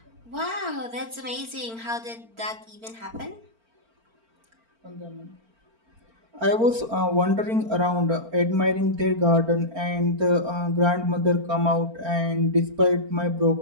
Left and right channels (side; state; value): left; late; 4.4 ms